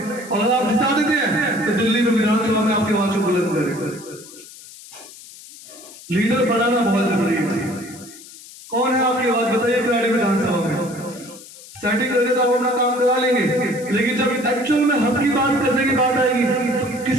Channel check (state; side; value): noise; left; hiss, 18 dB below the sound